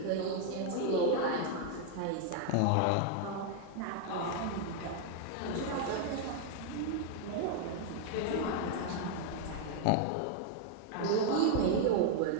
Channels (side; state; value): both; different; correlation 0.00